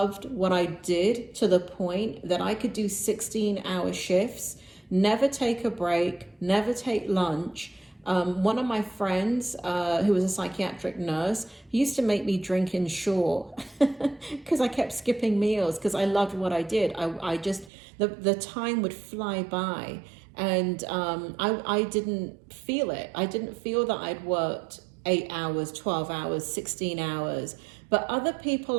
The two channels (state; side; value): drops out; left; at 17.7 s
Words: what I did to the point that I could do 16-hour shifts, never take a break, never take lunch. One of my friends, who was a psychiatric nurse, he used to make me drink in shore because I kept skipping meals because I loved what I did. I just, the time would fly by, and I didn't feel it. I didn't feel that I'd worked 8 hours, 12 hours, 16 hours. But other